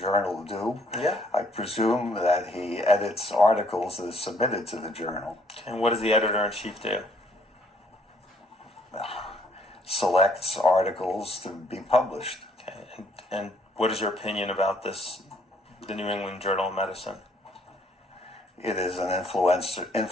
do? Yeah. I presume that he edits articles that are submitted to the journal. And what does the editor-in-chief do? Selects articles to be published. Okay. And what is your opinion about this, the New England Journal of Medicine? It is an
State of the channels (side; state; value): both; normal; correlation 0.65